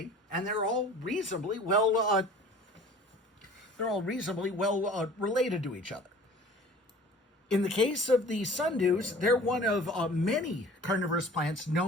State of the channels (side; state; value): both; normal; correlation 0.45